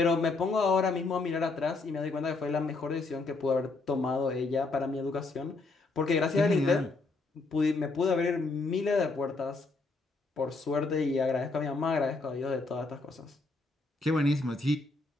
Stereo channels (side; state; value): right; quieter; 3.6 dB